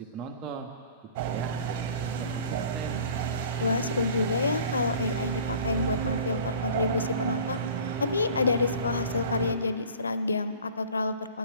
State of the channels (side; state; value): both; inverted; correlation -0.45